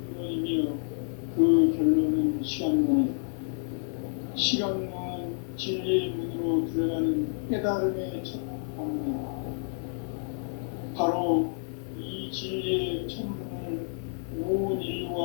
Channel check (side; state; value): right; silent; digital silence